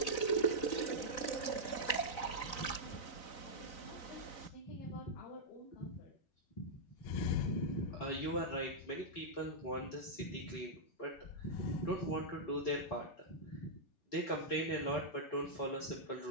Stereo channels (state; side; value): late; right; 4.1 ms